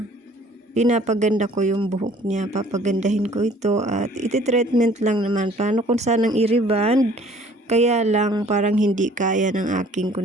pinapaganda ko yung buhok niya, papagandahin ko ito at iti-treatment lang naman. Plano kung sanang i-reband, kaya lang parang hindi kaya ng aking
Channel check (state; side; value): normal; both; correlation 0.55